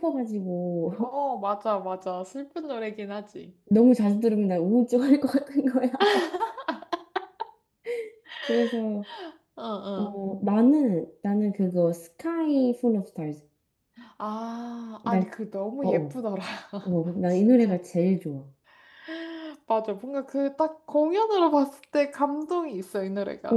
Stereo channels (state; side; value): identical; both; correlation 1.00